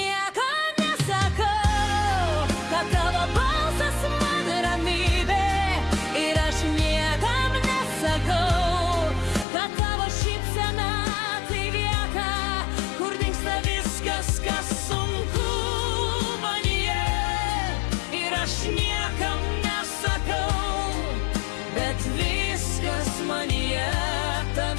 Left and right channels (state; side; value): drops out; right; at 9.5 s